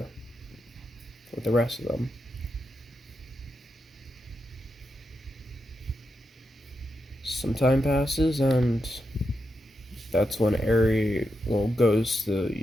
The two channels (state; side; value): normal; both; correlation 0.86